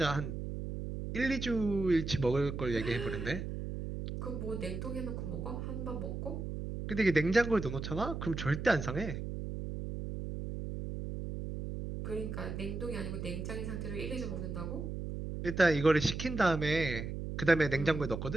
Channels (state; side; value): noise; right; hum, 5 dB below the sound